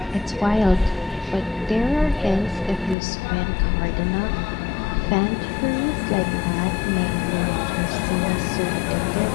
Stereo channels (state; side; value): drops out; right; at 3.0 s